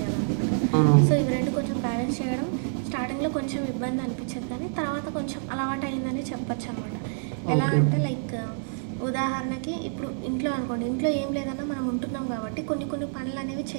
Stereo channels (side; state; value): left; silent; digital silence